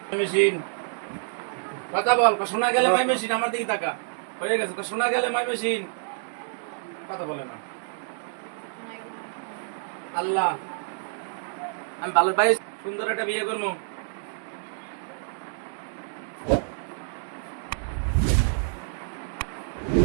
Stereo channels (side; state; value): left; silent; digital silence